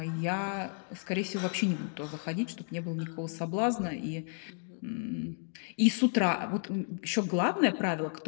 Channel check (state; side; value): silent; right; 56 dB below the other